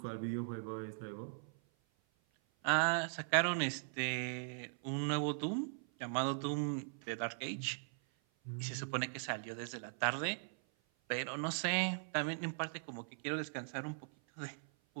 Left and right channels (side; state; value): left; silent; 51 dB below the other